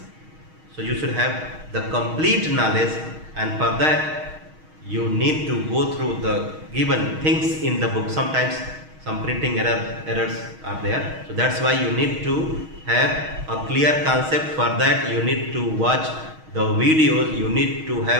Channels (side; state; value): left; late; 6.4 ms